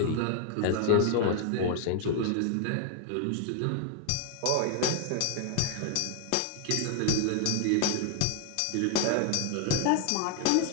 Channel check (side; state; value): both; different; correlation 0.00